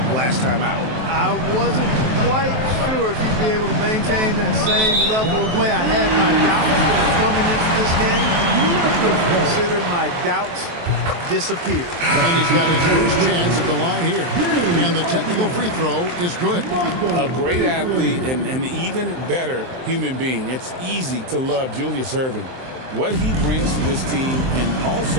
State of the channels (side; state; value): left; late; 23 ms